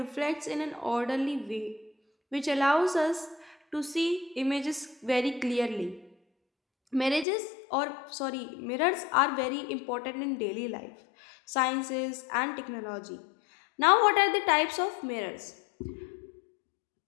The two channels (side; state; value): right; drops out; at 7.2 s